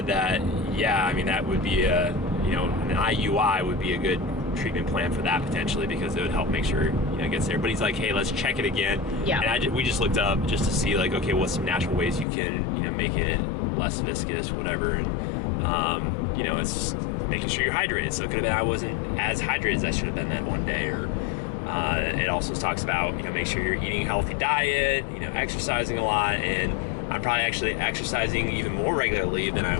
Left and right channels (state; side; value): drops out; right; at 12.2 s